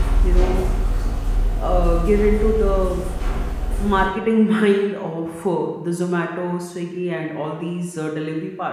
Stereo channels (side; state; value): both; identical; correlation 1.00